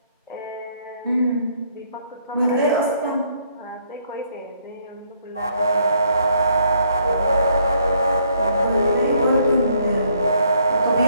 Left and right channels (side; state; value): both; inverted; correlation -0.68